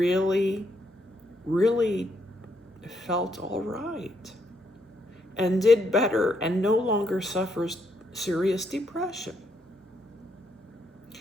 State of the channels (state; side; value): normal; both; correlation 0.75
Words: really felt all right and did better and no longer suffers serious depression.